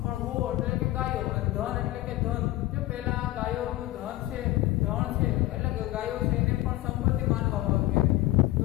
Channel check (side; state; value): right; quieter; 16.9 dB